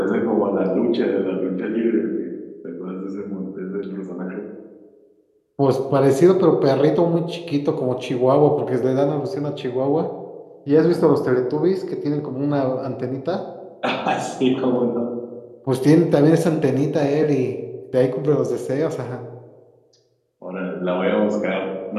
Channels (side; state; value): both; identical; correlation 1.00